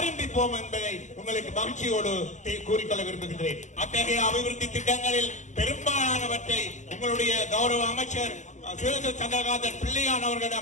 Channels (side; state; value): right; late; 0.35 ms